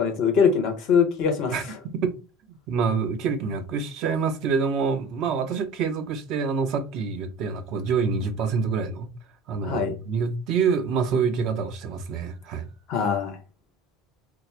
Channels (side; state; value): both; normal; correlation 0.40